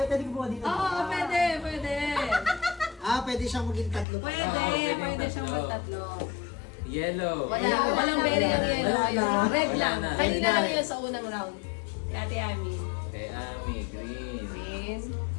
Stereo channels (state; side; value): drops out; right; at 4.0 s